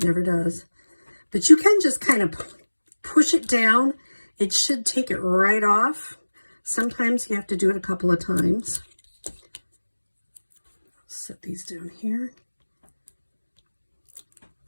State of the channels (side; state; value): both; inverted; correlation -1.00